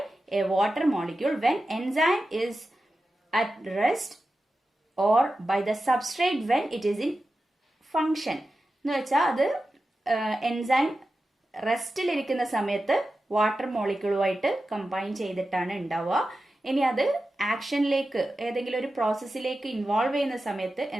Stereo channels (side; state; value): both; normal; correlation 0.92